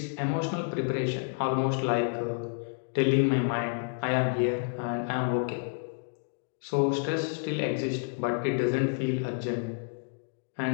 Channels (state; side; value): silent; right; digital silence